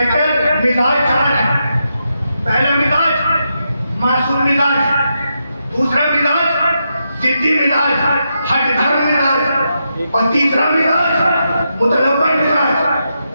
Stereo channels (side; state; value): both; inverted; correlation -0.84